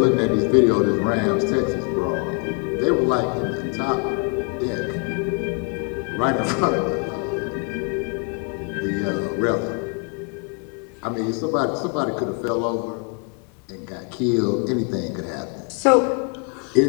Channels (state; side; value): quieter; right; 37.0 dB